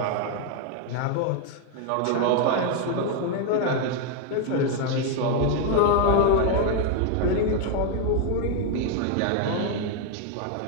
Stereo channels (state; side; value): different; both; correlation 0.01